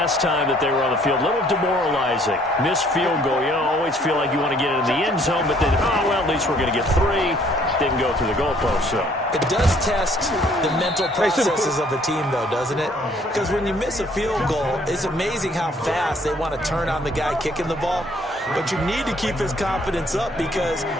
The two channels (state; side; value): normal; both; correlation 0.61